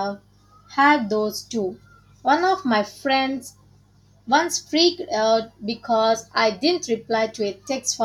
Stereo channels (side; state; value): both; identical; correlation 1.00